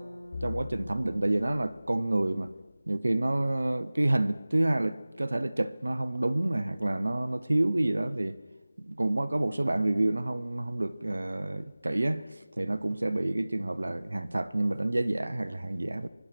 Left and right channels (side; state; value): both; inverted; correlation -0.99